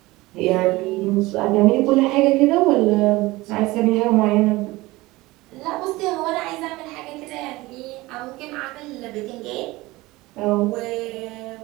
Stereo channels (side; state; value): left; quieter; 20.3 dB